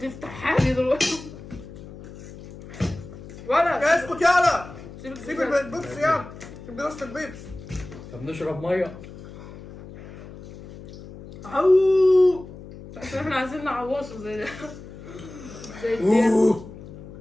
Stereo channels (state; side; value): noise; left; hum, 15 dB below the sound